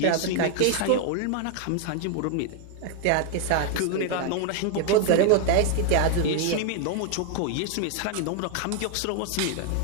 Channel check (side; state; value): both; different; correlation 0.01